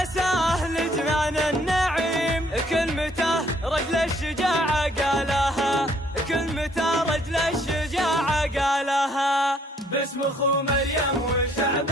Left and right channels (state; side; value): normal; both; correlation 0.64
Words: لجنان النعيم كلمته رجل الشجاعة قالها كلمته رجل الشجاعة قالها. باسم أخو مريم